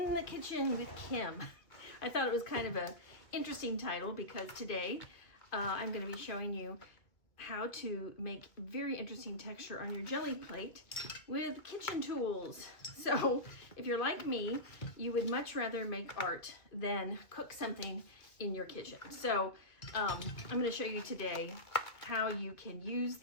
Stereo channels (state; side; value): late; right; 1.9 ms